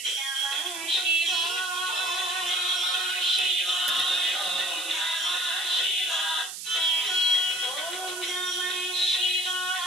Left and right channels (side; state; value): right; noise; hiss, 8 dB below the sound